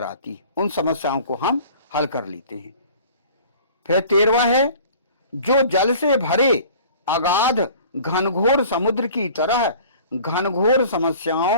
आती है, उन समस्याओं को हम हल कर लेते हैं। फिर 13वां है जो जल से भरे अगाध घनघोर समुद्र की तरह घनघोर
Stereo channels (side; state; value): both; inverted; correlation -0.47